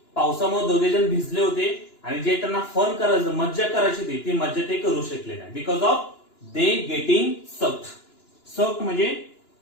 पावसामुळे दोघे जण भिजले होते आणि जे त्यांना फन करायचं, मज्जा करायची होती, ती मज्जा ते करू शकले नाही. Because of they getting soaked. Soaked म्हणजे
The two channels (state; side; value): late; right; 2.9 ms